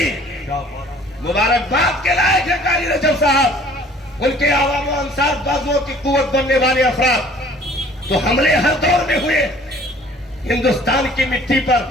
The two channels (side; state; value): both; normal; correlation 0.53